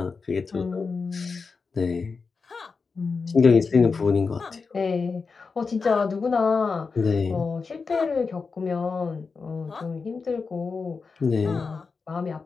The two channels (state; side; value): quieter; right; 4.8 dB